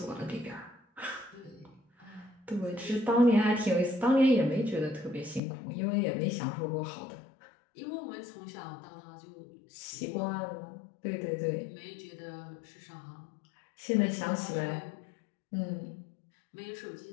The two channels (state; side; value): drops out; right; at 5.4 s